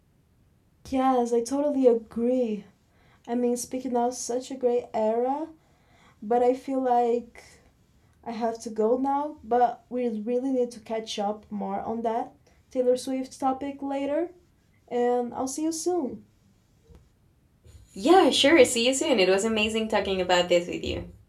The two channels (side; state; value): both; identical; correlation 1.00